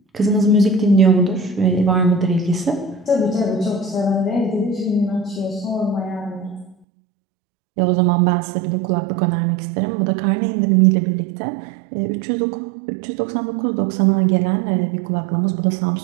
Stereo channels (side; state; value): left; drops out; at 6.8 s